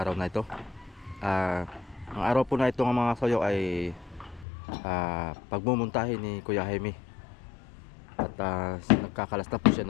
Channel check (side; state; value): right; drops out; at 4.5 s